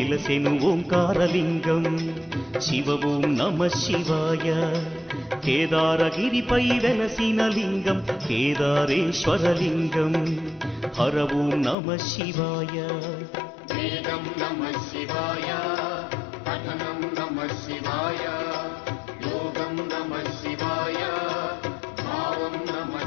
ఓంకారలింగం శివ ఓం నమః శివాయ కేదారగిరిపై వెలసిన లింగం కేదారేశ్వరలింగం హర ఓం నమః శివాయ వేదం నమః శివాయ పఠనం నమః శివాయ యోగం నమః శివాయ భావం నమః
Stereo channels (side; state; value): right; drops out; at 11.8 s